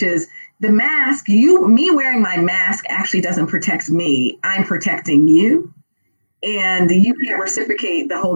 is the mask, me wearing my mask actually doesn't protect me. I'm protecting you. And you can't reciprocate the whole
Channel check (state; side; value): inverted; both; correlation -1.00